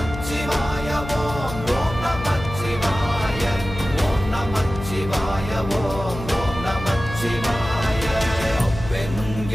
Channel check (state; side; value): noise; left; hum, 10 dB below the sound